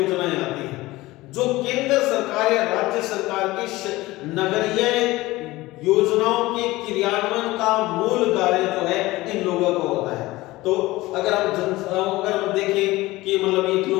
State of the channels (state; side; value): quieter; right; 19.1 dB